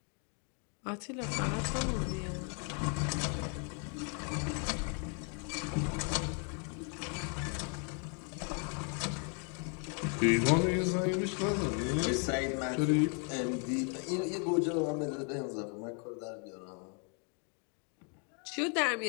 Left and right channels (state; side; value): quieter; right; 39.1 dB